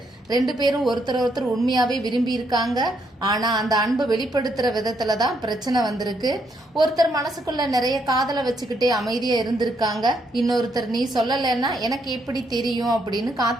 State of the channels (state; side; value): normal; both; correlation 0.74